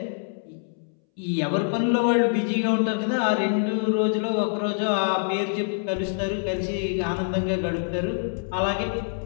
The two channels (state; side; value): silent; right; 62 dB below the other